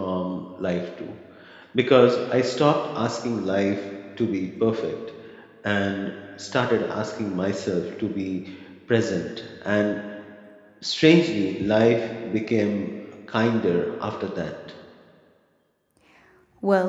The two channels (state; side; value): identical; both; correlation 1.00